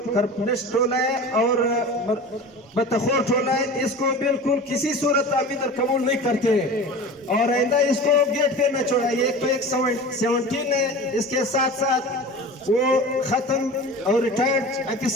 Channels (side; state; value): both; normal; correlation 0.35